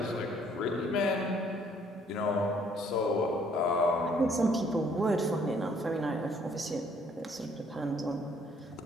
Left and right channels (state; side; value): normal; both; correlation 0.63